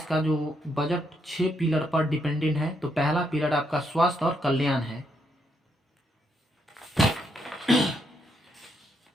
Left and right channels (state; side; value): normal; both; correlation 0.77